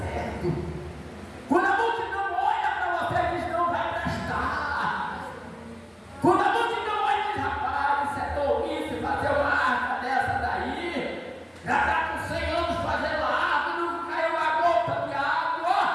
certo. Quando a multidão olha para você e diz não vai prestar. Quando a multidão olha e diz rapaz, isso é tolice fazer uma arca dessa daí. Já está com 100 anos fazendo a arca e não caiu uma gota de água.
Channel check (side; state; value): both; identical; correlation 1.00